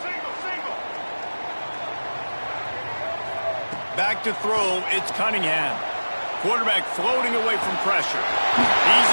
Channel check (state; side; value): inverted; both; correlation -1.00